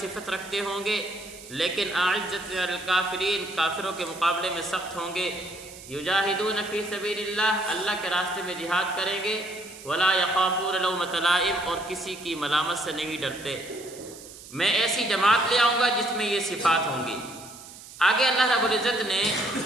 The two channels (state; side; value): noise; right; hiss, 17 dB below the sound